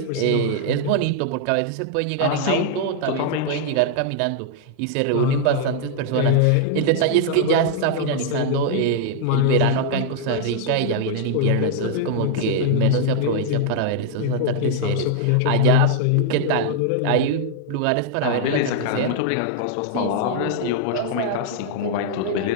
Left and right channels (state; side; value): different; both; correlation -0.01